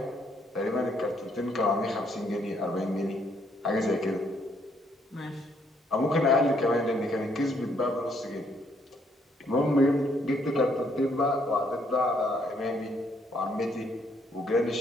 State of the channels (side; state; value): both; normal; correlation 0.70